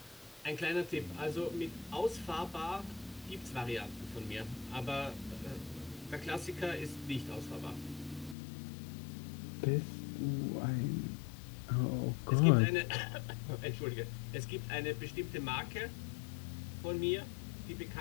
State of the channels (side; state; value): right; drops out; at 8.3 s